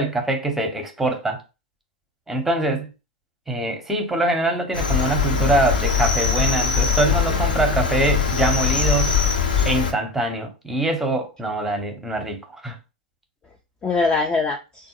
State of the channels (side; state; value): both; normal; correlation 0.33